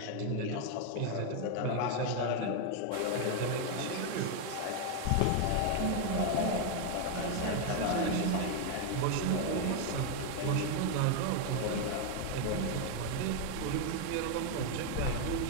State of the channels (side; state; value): both; different; correlation 0.01